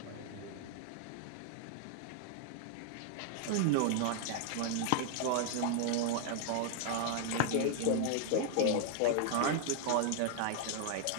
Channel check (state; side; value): different; both; correlation 0.00